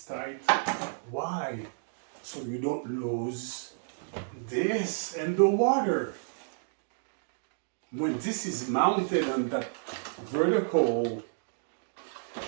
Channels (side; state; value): left; silent; digital silence